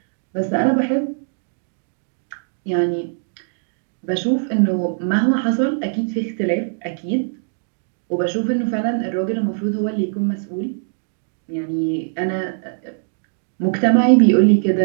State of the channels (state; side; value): silent; left; digital silence